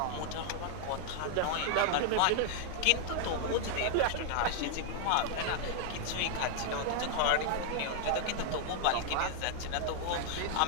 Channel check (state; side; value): different; both; correlation 0.00